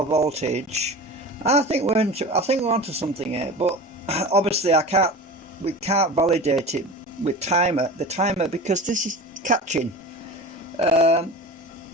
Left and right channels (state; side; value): normal; both; correlation 0.33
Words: voltage. And I think we're onto something here. But obviously, we can't validate it with the timer, because this is catching. The